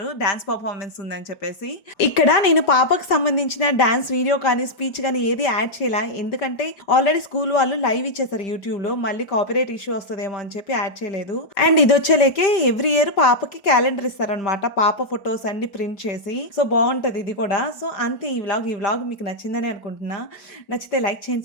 డాన్స్ పర్ఫార్మెన్స్ ఉందని చెప్పేసి. ఇక్కడ నేను పాపకు సంబంధించిన డాన్స్ వీడియో కానీ స్పీచ్ కానీ ఏది యాడ్ చేయాల, ఎందుకంటే ఆల్రెడీ స్కూల్ వాళ్ళు లైవ్ ఇచ్చేసారు యూట్యూబ్ లో, మళ్ళీ కాపీరైట్ ఇష్యూ వస్తుందేమో అని చెప్పి యాడ్ చేయలేదు. అండ్ ఇది వచ్చేలేకే ఎవ్రీ ఇయర్ పాపకి క్యాలెండర్ ఇస్తారనమాట, పాప ఫొటోస్ అన్ని ప్రింట్ చేసి. సో బాగుంటది ఇది కూడా. సో అంతే ఈ వ్లాగ్ మీకు నచ్చిందని అనుకుంటున్నా. నచ్చితే లైక్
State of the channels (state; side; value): late; right; 5.1 ms